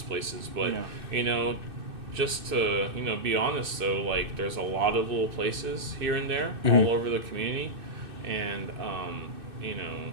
places. But just to be honest though, like there's a lot of little places here and there all over the community, and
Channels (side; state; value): left; late; 2.6 ms